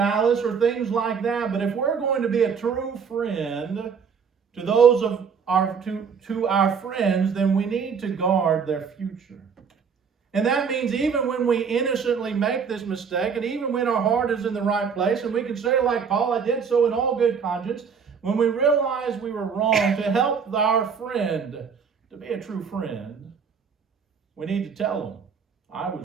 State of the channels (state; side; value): quieter; left; 6.3 dB